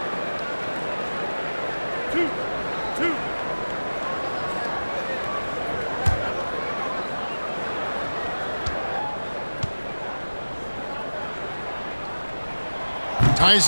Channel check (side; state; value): both; inverted; correlation -1.00